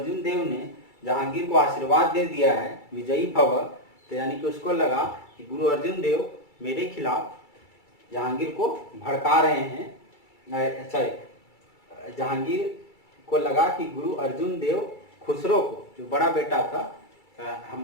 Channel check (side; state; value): right; late; 2.3 ms